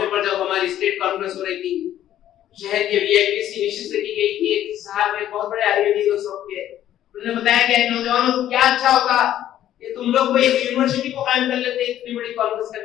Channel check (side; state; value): right; quieter; 11.9 dB